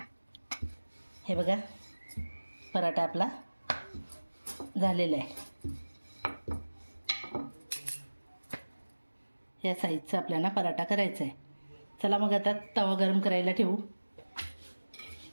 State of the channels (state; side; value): inverted; both; correlation -1.00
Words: हे बघा, पराठा आपला झालेला आहे. या साईजचा आपल्याला पराठा करायचा आहे. चला मग आता तवा गरम करायला ठेवू.